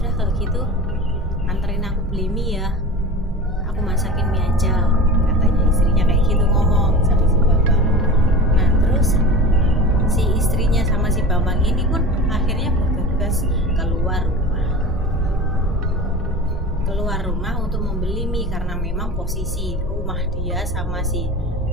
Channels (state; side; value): normal; both; correlation 0.33